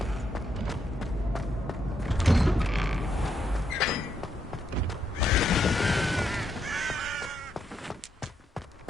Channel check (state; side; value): normal; both; correlation 0.78